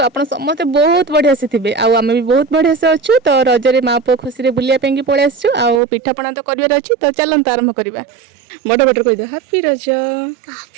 आपण समस्त बहुत बढ़िया से थिबे आ आमे भी बहुत बढ़िया से अछु। तो रजरे माँ पु खुशी रे बुलिया पेंगी पळे आछू आ पिठापଣା तो करिवार अछि। तो चलंत आरंभ करिबा। बड़ बड़ कहि दे हैप्पी रज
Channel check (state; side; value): drops out; left; at 5.8 s